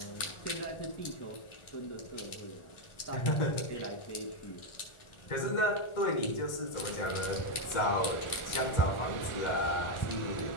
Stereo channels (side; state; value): right; late; 1.4 ms